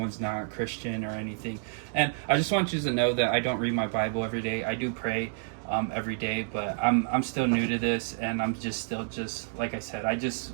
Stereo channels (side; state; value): left; silent; digital silence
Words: not Christian or anything, and I just want you to know that I don't read my Bible every day. I do pray every day, but I'm still new to this, and I'm just like I said, I just